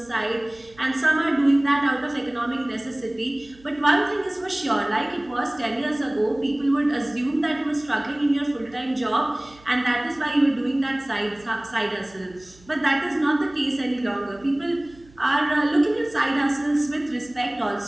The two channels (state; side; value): noise; right; hum, 26 dB below the sound